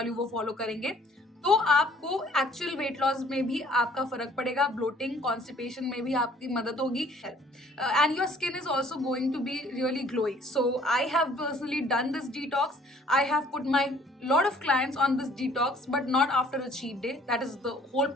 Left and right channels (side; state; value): both; normal; correlation 0.57